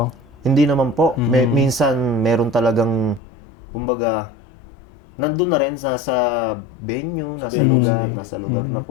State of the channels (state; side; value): drops out; right; at 3.2 s